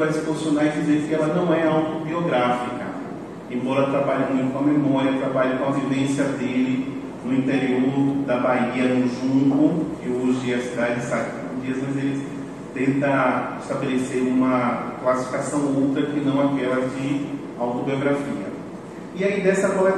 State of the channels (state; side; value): identical; both; correlation 1.00